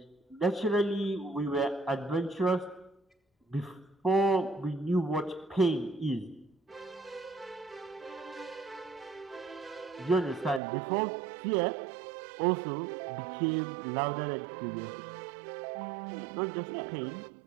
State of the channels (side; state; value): left; drops out; at 10.6 s